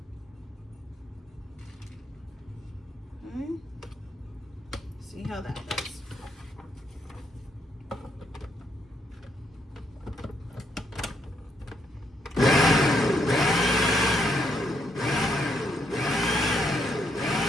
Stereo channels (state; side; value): normal; both; correlation 0.75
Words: Okay. See how that does.